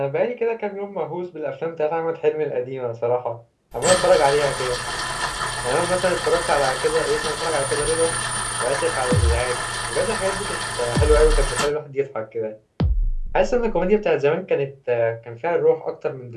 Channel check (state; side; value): identical; both; correlation 1.00